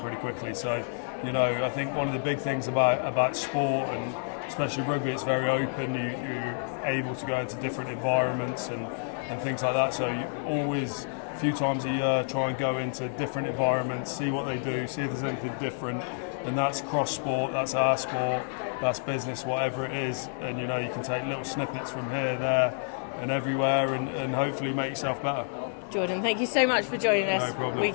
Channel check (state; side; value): silent; right; digital silence